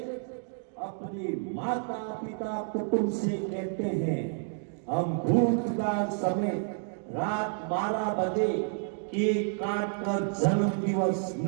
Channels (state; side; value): silent; left; 58 dB below the other